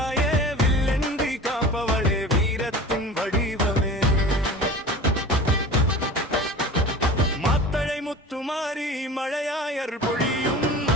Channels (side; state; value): both; normal; correlation 0.37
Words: வில்லென்றி காப்பவளே வீரத்தின் வடிவமே. மாத்தளை முத்துமாரி மழையாய் அருள் பொழியும்